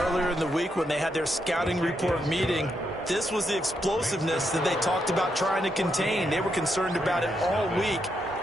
earlier in the week when they had their scouting report meeting, this was the explosiveness that they talked about trying to contain. They were concerned about it all week,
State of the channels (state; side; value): normal; both; correlation 0.80